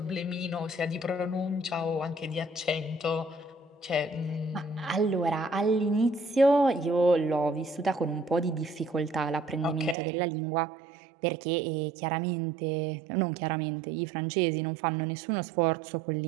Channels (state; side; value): drops out; left; at 10.0 s